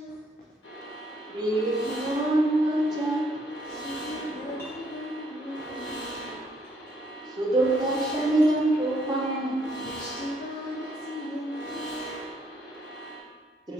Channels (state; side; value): normal; both; correlation 0.70